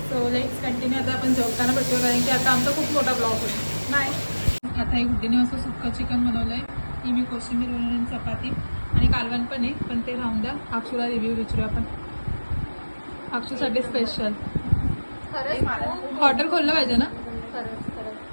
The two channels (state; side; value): inverted; both; correlation -1.00